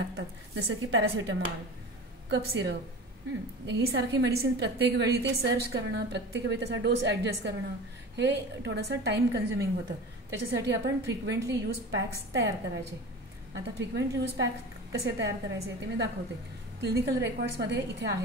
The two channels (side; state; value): both; normal; correlation 0.34